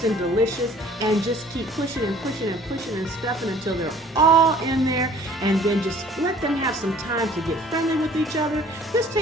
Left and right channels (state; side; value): normal; both; correlation 0.53